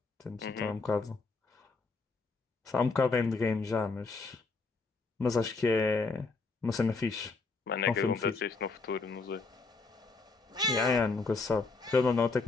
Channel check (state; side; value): quieter; right; 4.0 dB